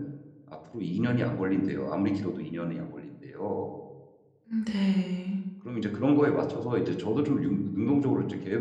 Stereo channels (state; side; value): identical; both; correlation 1.00